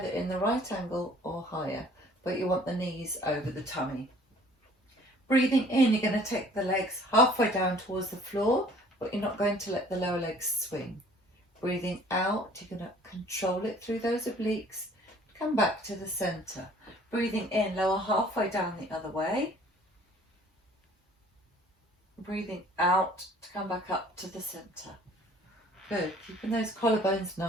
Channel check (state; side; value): normal; both; correlation 0.53